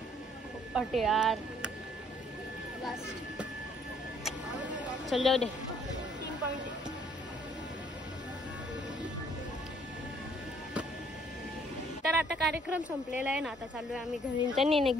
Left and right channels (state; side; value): normal; both; correlation 0.63